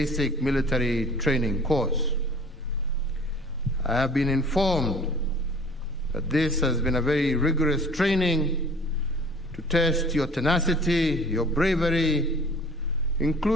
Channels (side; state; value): both; normal; correlation 0.49